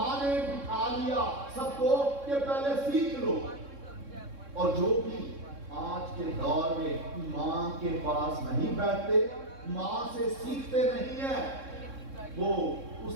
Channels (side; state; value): left; late; 3.6 ms